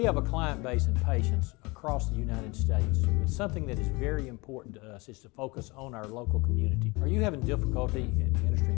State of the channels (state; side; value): quieter; right; 25.5 dB